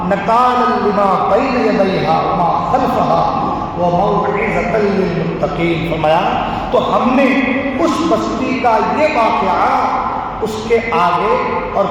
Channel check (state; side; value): identical; both; correlation 1.00